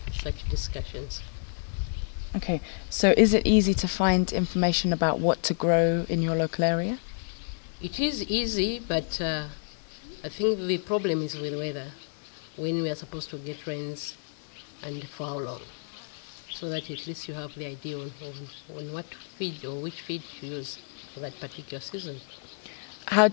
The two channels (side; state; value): right; silent; digital silence